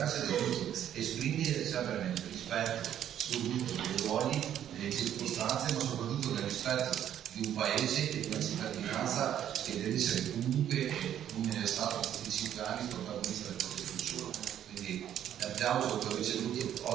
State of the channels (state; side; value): quieter; left; 10.5 dB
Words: ed è giusto esprimere sempre nel rispetto soprattutto dei ruoli, delle circostanze, ma soprattutto nel rispetto di di un paese e di una cittadinanza che deve essere comunque, come è stato per tutti i 5 anni, protagonista del proprio futuro. Quindi l'applauso che ho ricevuto